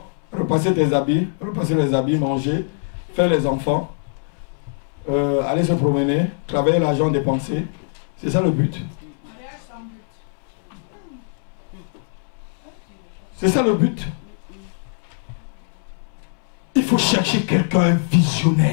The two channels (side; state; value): right; silent; 64 dB below the other